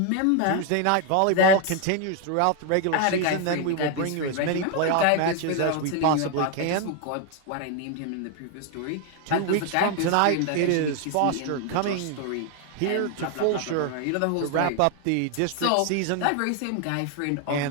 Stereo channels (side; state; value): both; different; correlation 0.00